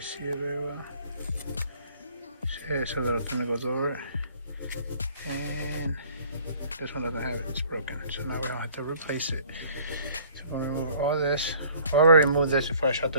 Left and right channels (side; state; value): both; inverted; correlation -0.55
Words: see it very well. See, it's a little thing that goes over it. And this one doesn't have it, it's broken. So now we don't have to replace it. So we're gonna remove all this. I already removed this before I shot